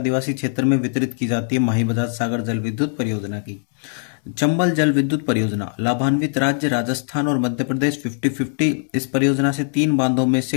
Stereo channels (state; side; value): silent; right; 65 dB below the other